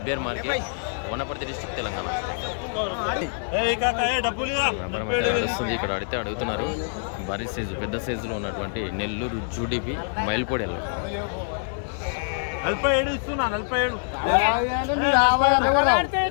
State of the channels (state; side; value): silent; right; digital silence